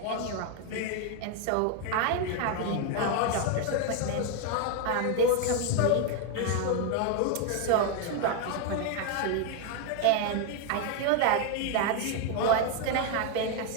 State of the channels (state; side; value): different; both; correlation 0.01